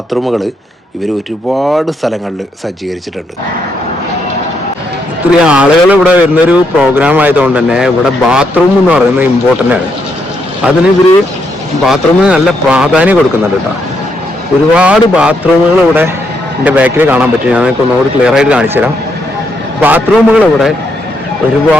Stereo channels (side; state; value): both; normal; correlation 0.77